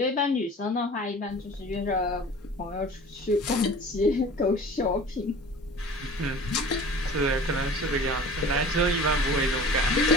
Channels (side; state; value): both; normal; correlation 0.42